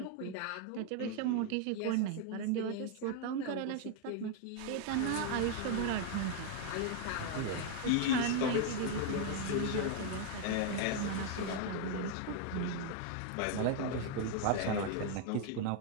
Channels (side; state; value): both; different; correlation 0.00